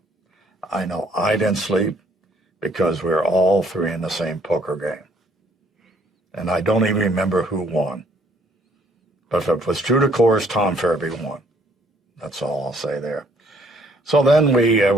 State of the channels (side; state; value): both; normal; correlation 0.64